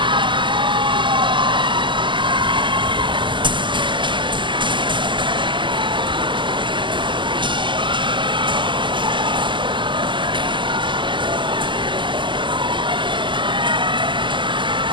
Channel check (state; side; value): late; left; 0.24 ms